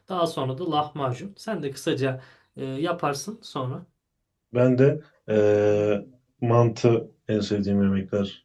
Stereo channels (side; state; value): both; identical; correlation 1.00